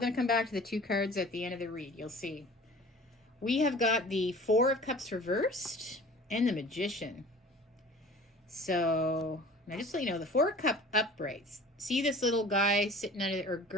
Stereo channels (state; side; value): normal; both; correlation 0.44